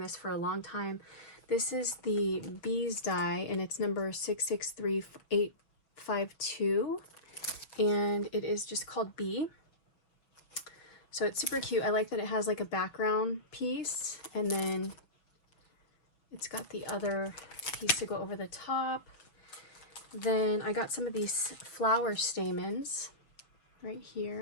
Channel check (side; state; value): right; late; 6.2 ms